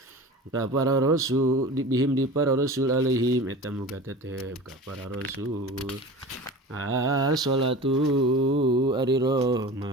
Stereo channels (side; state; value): both; normal; correlation 0.35